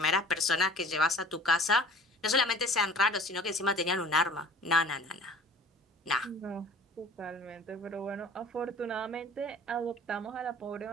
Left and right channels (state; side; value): normal; both; correlation 0.47